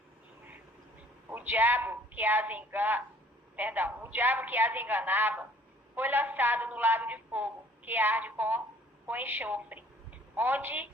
O diabo que as enganava foi lançado no lago de fogo, que arde com enxofre, onde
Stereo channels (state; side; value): normal; both; correlation 0.56